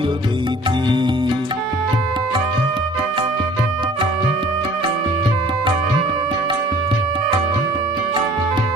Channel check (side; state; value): both; normal; correlation 0.51